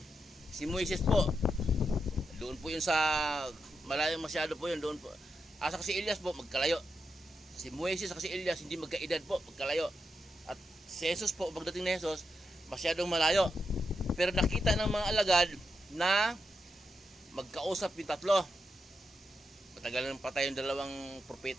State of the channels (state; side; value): normal; both; correlation 0.85